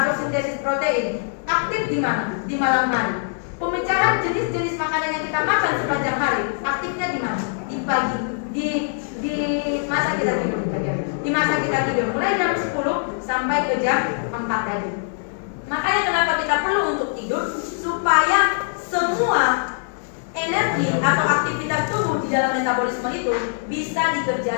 sintesis protein aktif di mana? Di malam hari. Pemecahan jenis-jenis makanan yang kita makan sepanjang hari aktifnya di mana? Di pagi, di masa kita tidur. Di masa kita tidur mulai jam 10 sampai ke jam 4 tadi. Makanya kenapa kita perlu untuk tidur supaya semua energi atau aktivitas tubuh di dalam metabolisme itu bisa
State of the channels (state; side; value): silent; right; 64 dB below the other